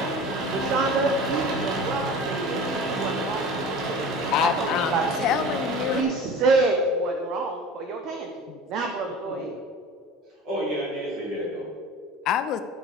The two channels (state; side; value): normal; both; correlation 0.37